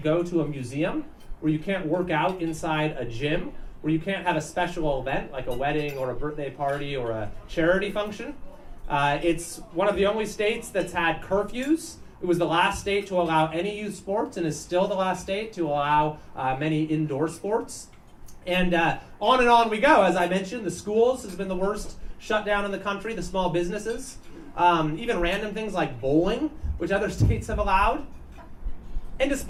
go to a museum, where you can't work out inside a gym, where you can't have a special event like a wedding or a birthday party or a charity function. It's one of the only states that's had curfews. It was the last state to allow any youth sports and is still the last state to allow many indoor sports. And on we go. As I mentioned, the schools has been the worst shutdown in the country, the small businesses, even random things like bowling, which other states have allowed. And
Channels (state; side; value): identical; both; correlation 1.00